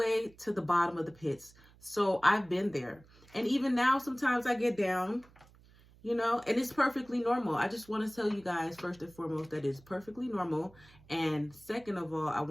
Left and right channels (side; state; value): right; noise; hum, 26 dB below the sound